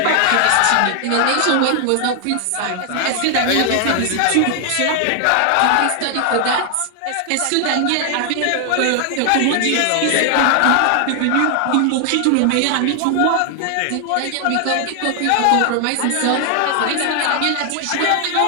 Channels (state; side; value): different; both; correlation 0.00